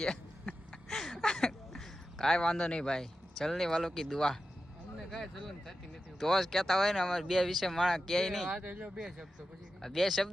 કાંઈ વાંધો નહીં ભાઈ. ચલની વાલો કી દુઆ અમને કાંઈ ચલન થતી નથી. તો જ કહેતા હોય ને અમારે બે વિશે માણસ કહે નહીં. આ તો જો બે શબ્દો પછી બે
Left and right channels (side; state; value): both; normal; correlation 0.92